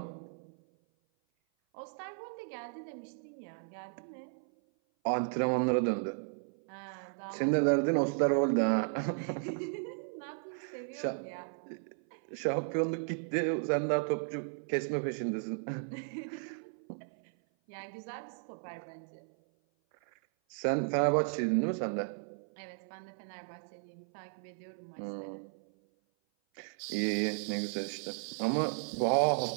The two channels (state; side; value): silent; left; 54 dB below the other